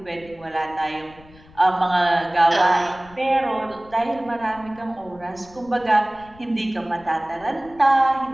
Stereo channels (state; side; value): noise; left; rumble, 24 dB below the sound